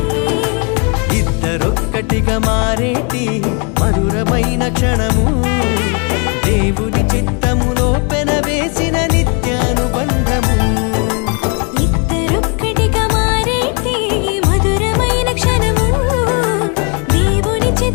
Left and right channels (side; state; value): right; quieter; 35.8 dB